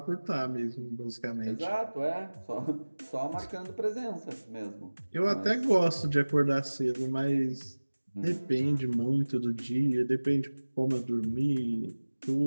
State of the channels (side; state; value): both; inverted; correlation -1.00